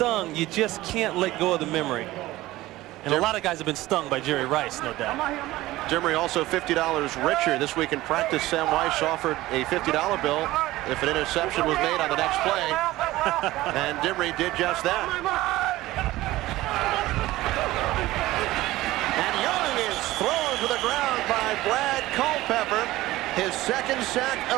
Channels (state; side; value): quieter; left; 17.3 dB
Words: you just can't let go of the memory. And a lot of guys have been stung by Jerry Rice, no doubt. Dimry also $50 richer. This week in practice, Sam Weiss offered a $50 bill if an interception was made on the next play. And Dimry did just that. And Young is thrown to the ground by Brad Culpepper, his 2nd sack